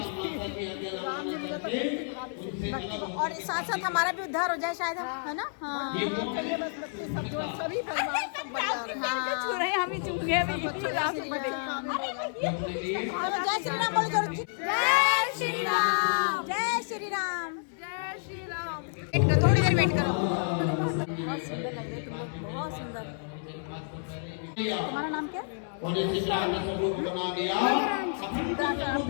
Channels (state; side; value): silent; right; 58 dB below the other